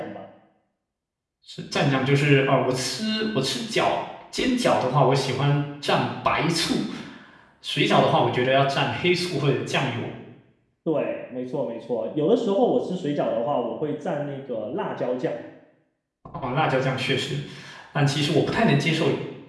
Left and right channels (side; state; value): both; identical; correlation 1.00